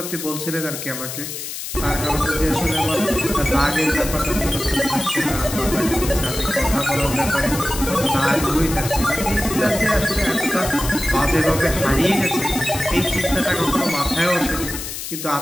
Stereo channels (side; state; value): left; noise; hiss, 7 dB below the sound